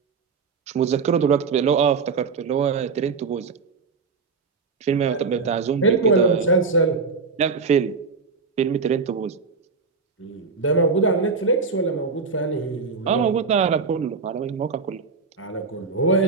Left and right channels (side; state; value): left; quieter; 4.8 dB